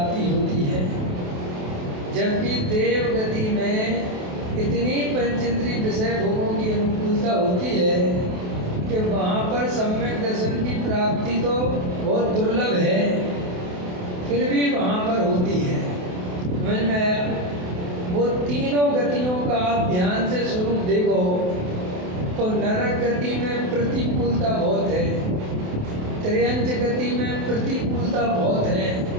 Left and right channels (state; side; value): late; left; 28 ms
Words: होती है, जबकि देव गति में इतनी पंचेंद्रिय विषय भोगों की अनुकूलता होती है कि वहाँ पर सम्यक दर्शन की प्राप्ति तो बहुत दुर्लभ है, फिर भी वहाँ पर होती है। समझ में आया? वो तीनों गतियों का आप ध्यान से स्वरूप देखो तो नरक गति में प्रतिकूलता बहुत है, त्रियंच गति में प्रतिकूलता बहुत है